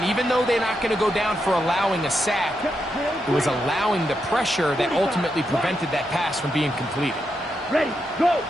even though they're not going to go down for allowing a sack, it was allowing the pressure that ultimately prevented that pass from being completed. Ready. Go.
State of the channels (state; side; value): normal; both; correlation 0.84